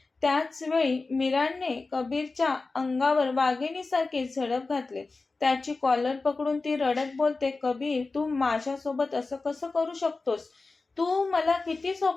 त्याचवेळी मीराने कबीरच्या अंगावर वाघिणीसारखी झडप घातली. त्याची कॉलर पकडून ती रडत बोलते, कबीर, तू माझ्यासोबत असं कसं करू शकतोस? तू मला किती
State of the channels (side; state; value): right; quieter; 3.7 dB